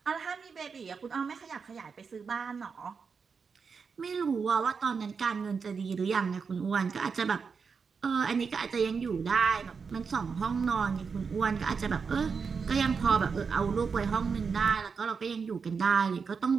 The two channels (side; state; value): left; quieter; 5.6 dB